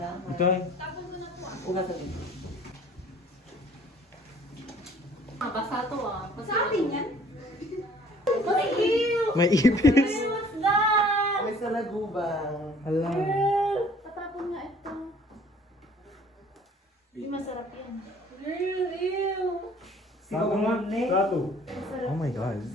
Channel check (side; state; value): both; normal; correlation 0.54